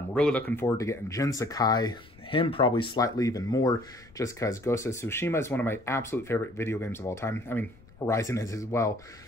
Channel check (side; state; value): left; noise; rumble, 25 dB below the sound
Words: really looking forward to getting Jin Sakai, him probably slightly even more, just because Ghost of Tsushima is one of my absolute favorite video games of all time. I mean, Horizon is as well.